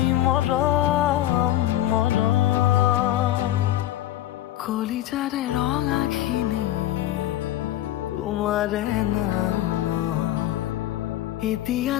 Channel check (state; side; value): quieter; right; 13.8 dB